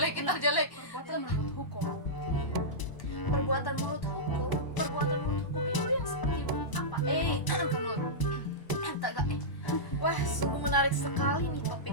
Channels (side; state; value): right; late; 1.0 ms